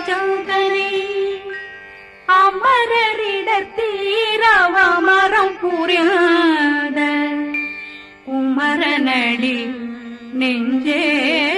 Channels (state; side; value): identical; both; correlation 1.00